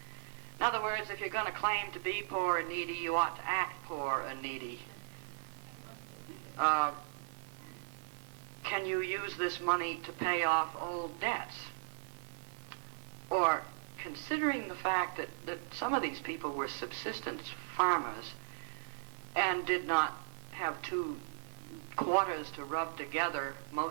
In other words, if you're going to claim to be poor and needy, you ought to act poor and needy. Can you use this money to pay off old debts? Or, considering the fact that some of these people were subsistence farmers and did not have two quarters to rub together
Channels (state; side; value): silent; left; digital silence